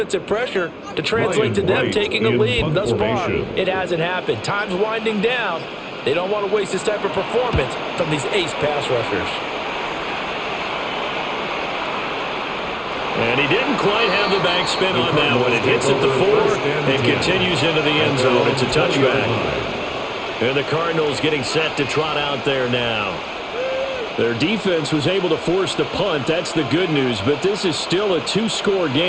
pressure to translate to them taking a lead. Thus far, it hasn't happened. Time's winding down. They don't want to waste this type of performance from these ace pass rushers. And he didn't quite have the back spin on that one. It hits at the 4 and continues into the end zone. It's a touchback. And the Cardinals getting set to trot out there now. Their defense was able to force the punt. That's the good news. But this is still a 2-score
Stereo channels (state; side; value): identical; both; correlation 1.00